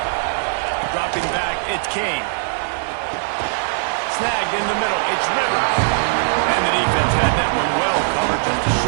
Dropping back, it's King. Snagged in the middle, it's Rivers. And the defense had that one well covered, just a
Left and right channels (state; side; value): silent; left; 64 dB below the other